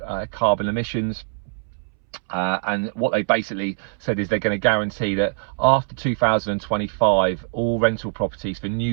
carbon emissions. And what they basically said is they're going to guarantee that after 2025 all rental properties for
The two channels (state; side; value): silent; left; 64 dB below the other